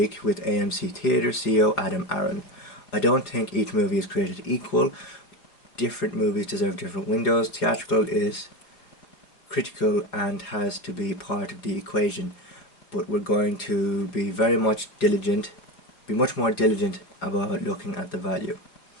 with AMC Theatre CEO Adam Aaron. "I don't think each movie is created equal. Different movies deserve different windows. Theatrical is critical and has to be part of the equation, but we're going to be much more diligent about looking at the value."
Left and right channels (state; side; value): late; right; 4.7 ms